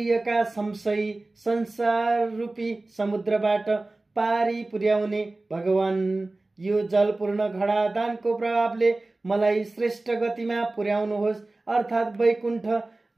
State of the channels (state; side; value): quieter; left; 3.0 dB